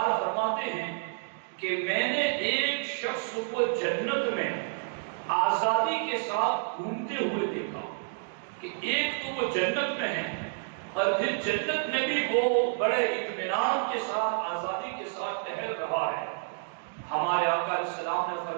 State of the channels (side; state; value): left; silent; digital silence